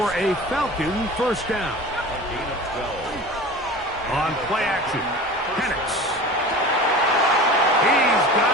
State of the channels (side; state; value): both; normal; correlation 0.36